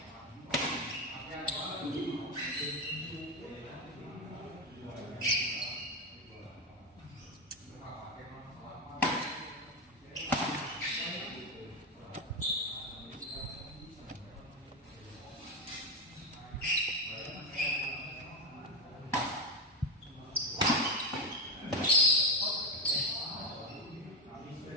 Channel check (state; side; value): normal; both; correlation 0.13